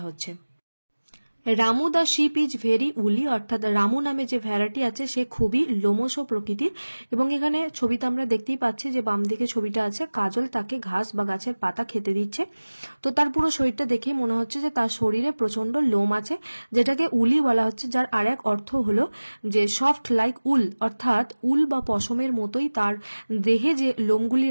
হচ্ছে। Ramu the ship is very উলি, অর্থাৎ রামু নামে যে ভ্যারাইটি আছে সে খুবই লোমশ প্রকৃতির। এবং এখানে ছবিতে আমরা দেখতেই পাচ্ছি যে বাম দিকে ছবিটা আছে, কাজল তাকে ঘাস বা গাছের পাতা খেতে দিচ্ছে। তো তার পুরো শরীরটা দেখেই মনে হচ্ছে যে তার শরীরে প্রচন্ড লোম আছে, যেটাকে উলি বলা হচ্ছে, যার আর এক অর্থ হলো যে সফট লাইক উল, অর্থাৎ উল বা পশমের মতোই তার দেহে যে লোমগুলি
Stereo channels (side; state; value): both; inverted; correlation -1.00